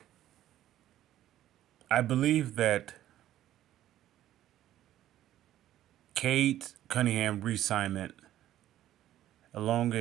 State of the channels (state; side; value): quieter; left; 12.8 dB